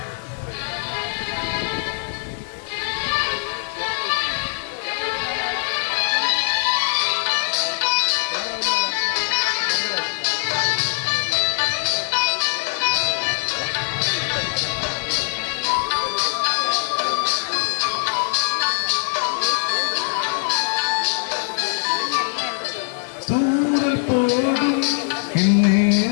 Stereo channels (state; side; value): silent; right; digital silence